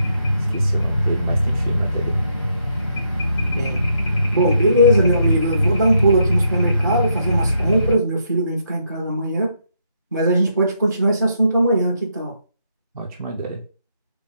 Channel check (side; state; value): both; inverted; correlation -0.76